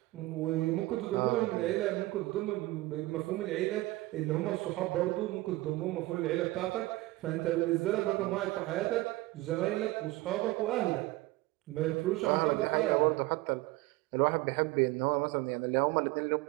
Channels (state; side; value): quieter; left; 19.5 dB